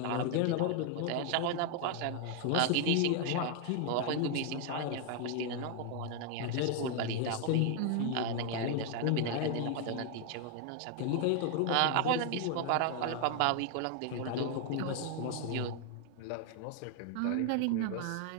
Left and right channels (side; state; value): both; different; correlation 0.00